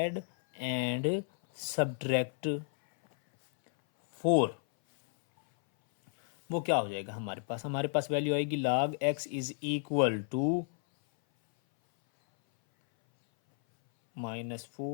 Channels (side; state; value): right; silent; 57 dB below the other